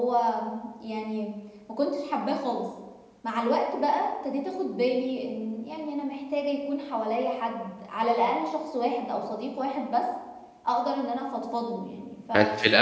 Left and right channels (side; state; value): both; identical; correlation 1.00